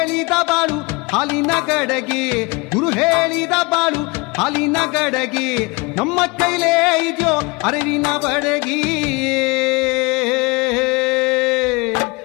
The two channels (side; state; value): right; quieter; 26.8 dB